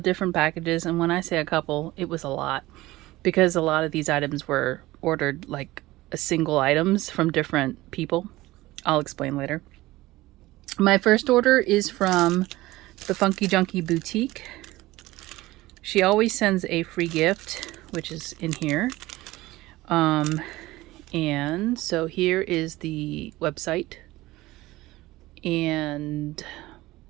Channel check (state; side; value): quieter; left; 18.4 dB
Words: different packages, and when I say a couple, it was a lot because a lot of these items were ordered like a single items from different people. I'll explain later. My first order is from the Funky Junkie Boutique. She always sends a free gift, which is in here. And so here is the website and